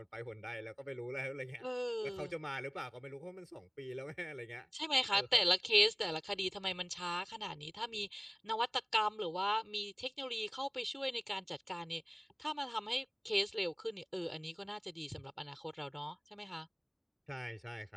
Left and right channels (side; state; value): both; identical; correlation 1.00